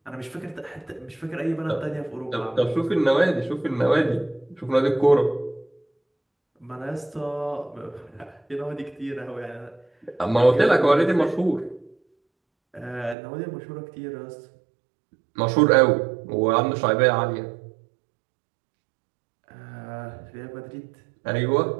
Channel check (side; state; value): left; drops out; at 13.2 s